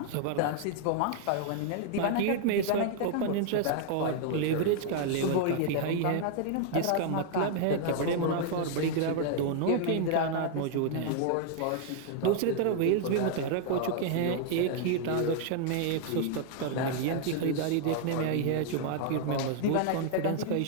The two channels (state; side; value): different; both; correlation 0.00